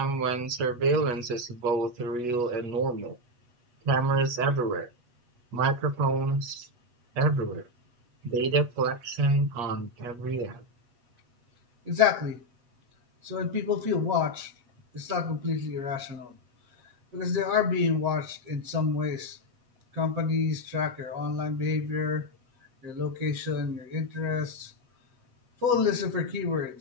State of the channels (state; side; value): late; left; 8.2 ms